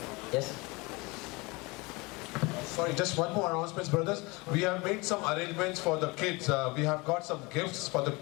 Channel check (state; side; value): quieter; right; 25.3 dB